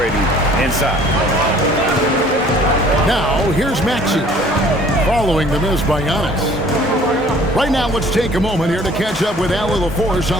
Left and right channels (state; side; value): normal; both; correlation 0.54